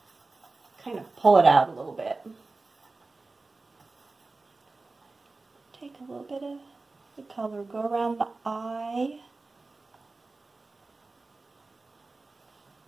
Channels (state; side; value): quieter; left; 3.5 dB